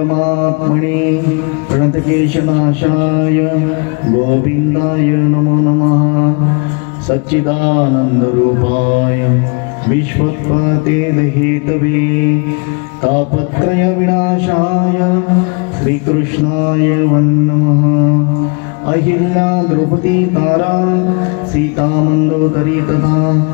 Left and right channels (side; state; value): right; quieter; 33.6 dB